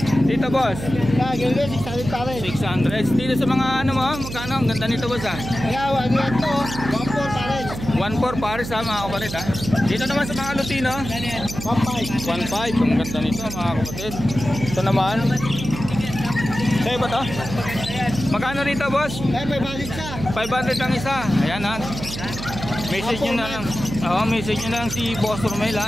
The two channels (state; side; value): noise; right; hum, 8 dB below the sound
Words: Dito boss? 600 pares. 600. Dito sa mga ano mo, magkano? Ang ganda nito boss ah. Ayaw, ano yan to? 1.4 pares. 1.4 pares ha mga kapatid ha. Dito naman sa mga Lutino 1.5. 1.5. Ang ganda nito mga kapatid. Ito naman sa'yo ba to? Magkano rito boss? 500 isa. 500 ang isa. Ayan ha. Message nyo na lang. Message nyo na lang si Boss Romel